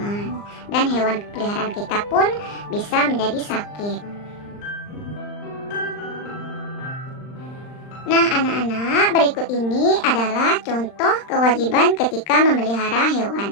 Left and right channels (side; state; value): right; late; 39 ms